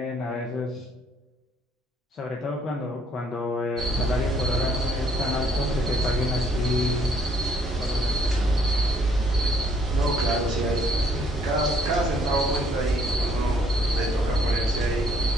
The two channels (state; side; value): normal; both; correlation 0.66